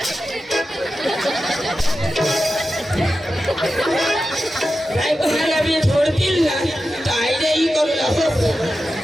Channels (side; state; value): both; normal; correlation 0.92